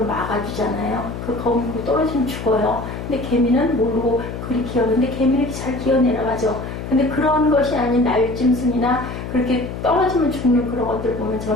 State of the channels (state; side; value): noise; left; hum, 8 dB below the sound